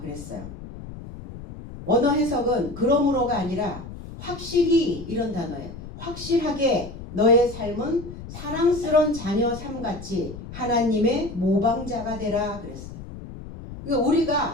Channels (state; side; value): noise; left; rumble, 12 dB below the sound